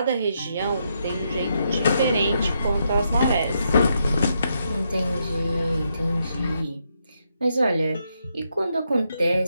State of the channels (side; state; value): both; inverted; correlation -0.79